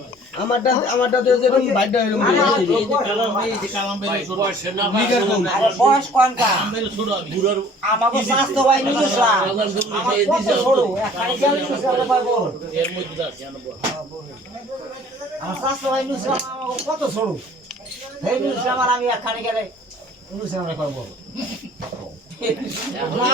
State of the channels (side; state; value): both; normal; correlation 0.51